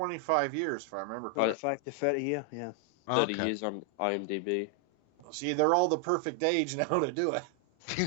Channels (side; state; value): both; normal; correlation 0.00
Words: years, if I remember correctly. 25 to 30 year, yeah. 30 years on IMDb. See, they're all the perfect age now to do it.